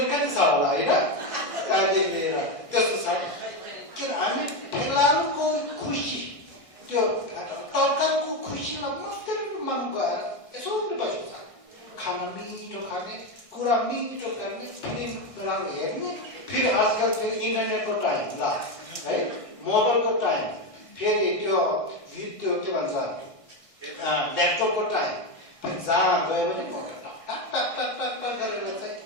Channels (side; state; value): right; late; 1.6 ms